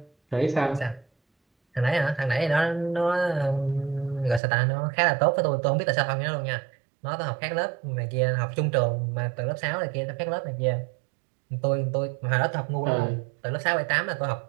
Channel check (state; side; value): drops out; left; at 4.4 s